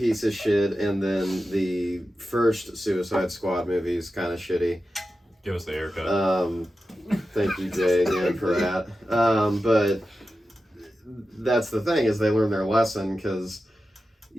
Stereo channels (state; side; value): normal; both; correlation 0.92